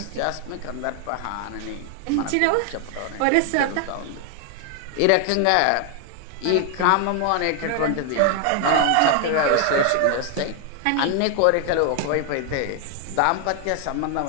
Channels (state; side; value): different; both; correlation 0.00